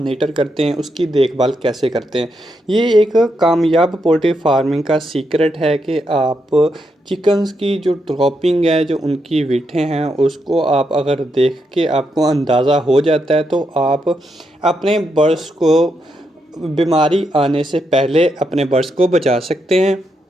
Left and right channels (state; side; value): normal; both; correlation 0.81